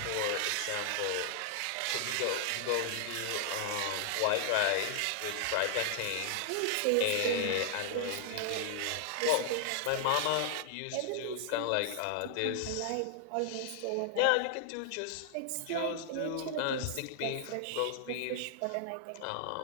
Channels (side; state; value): both; different; correlation -0.01